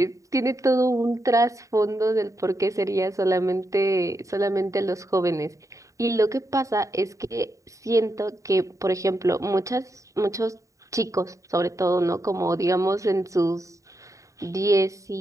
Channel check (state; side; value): late; left; 0.16 ms